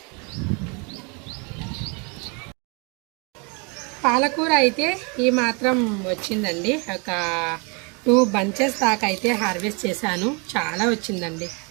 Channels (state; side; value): quieter; left; 32.5 dB